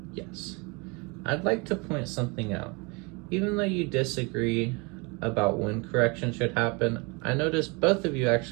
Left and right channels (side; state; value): left; quieter; 29.3 dB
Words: Yes. I'd like to point something out. Even though you disagree about when correction should happen, I notice both of you